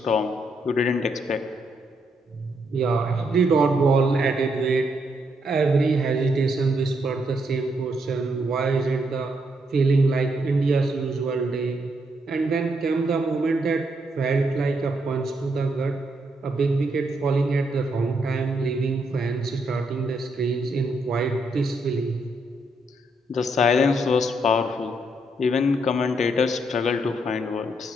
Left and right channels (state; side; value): normal; both; correlation 0.77